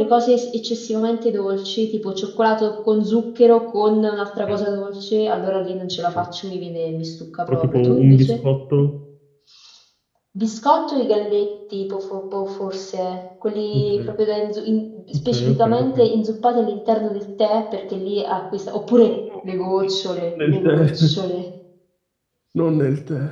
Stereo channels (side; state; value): both; identical; correlation 1.00